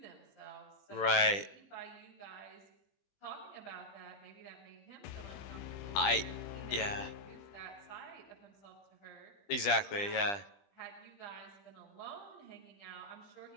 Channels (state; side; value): late; right; 20 ms